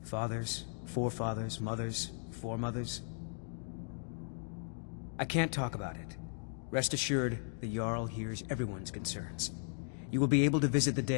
Fathers, forefathers, mothers, foremothers. I can't talk about it. Rest assured, the Jarl hears everyone's concerns. You will be able to visit the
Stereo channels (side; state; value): right; silent; digital silence